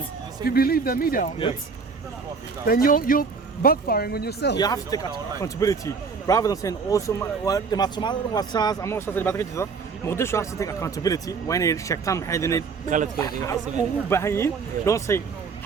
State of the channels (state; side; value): quieter; left; 5.0 dB